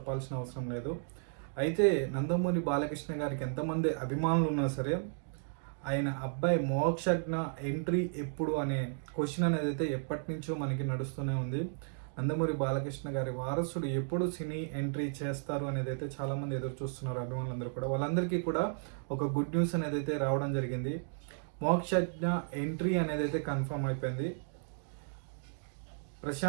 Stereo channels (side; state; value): left; silent; digital silence